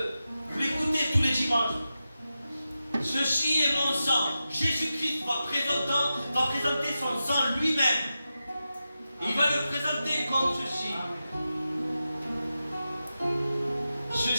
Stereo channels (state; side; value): inverted; both; correlation -0.91